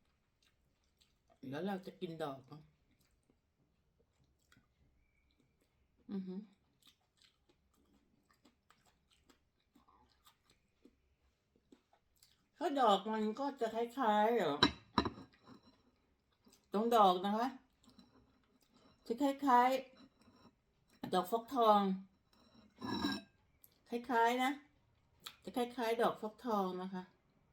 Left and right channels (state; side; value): identical; both; correlation 1.00